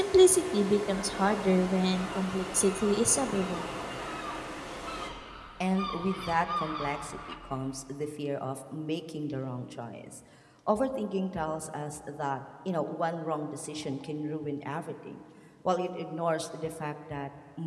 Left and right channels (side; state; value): both; identical; correlation 1.00